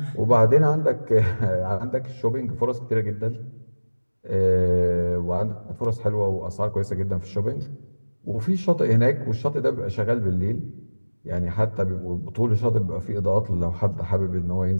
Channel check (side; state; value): both; inverted; correlation -1.00